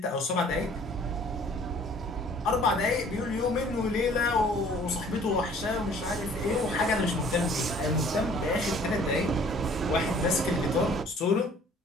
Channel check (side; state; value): both; normal; correlation 0.54